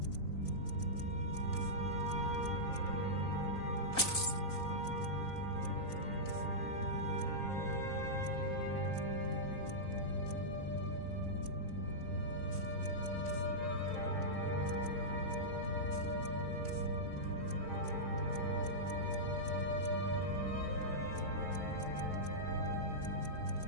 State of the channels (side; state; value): right; late; 3.9 ms